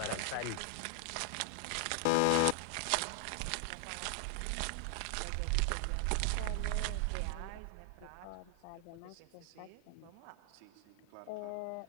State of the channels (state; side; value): different; both; correlation 0.00